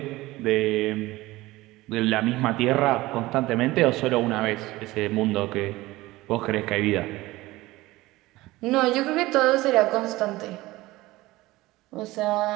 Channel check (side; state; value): left; quieter; 18.9 dB